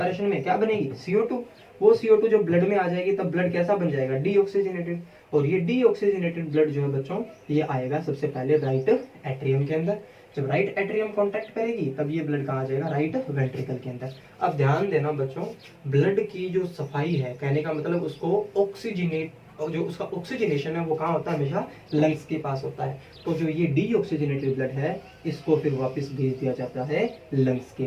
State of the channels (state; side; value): identical; both; correlation 1.00